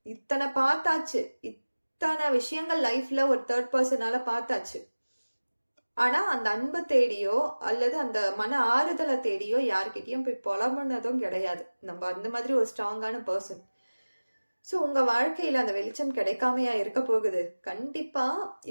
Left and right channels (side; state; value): both; inverted; correlation -1.00